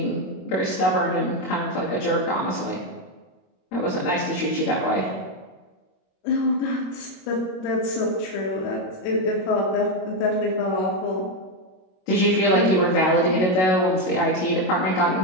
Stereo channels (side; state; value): right; late; 21 ms